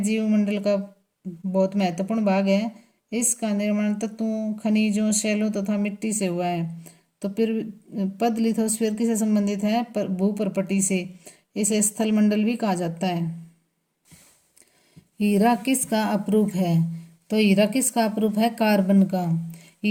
का बहुत महत्वपूर्ण भाग है। इसका निर्माण तत्वों, खनिजों, शैलों तथा मिट्टी से हुआ है। तो फिर पद लिथोस्फीयर किससे संबंधित है, भूपरपटी से। इसे स्थलमंडल भी कहा जाता है। हीरा किसका अपरूप है, तो हीरा किसका अपरूप है, कार्बन का।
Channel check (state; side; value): identical; both; correlation 1.00